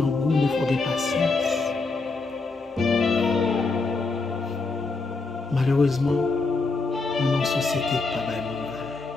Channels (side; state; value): right; quieter; 3.8 dB